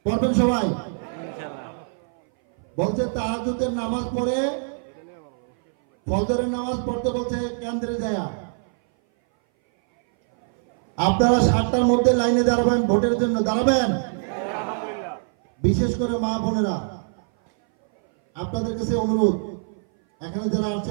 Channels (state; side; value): silent; left; 59 dB below the other